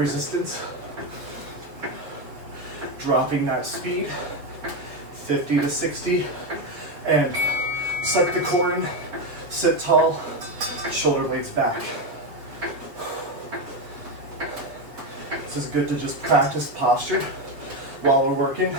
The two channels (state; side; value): late; left; 7.3 ms